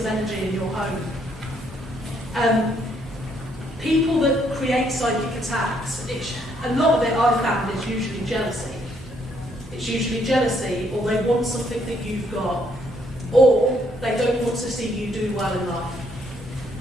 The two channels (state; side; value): normal; both; correlation 0.70